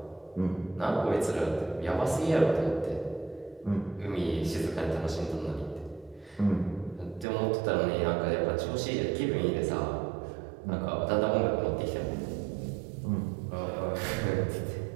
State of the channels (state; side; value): drops out; left; at 7.2 s